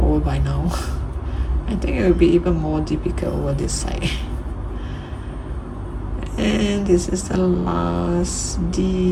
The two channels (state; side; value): identical; both; correlation 1.00